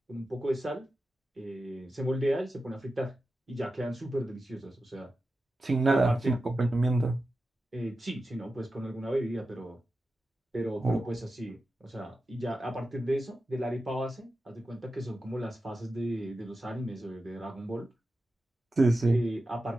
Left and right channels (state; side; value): normal; both; correlation 0.92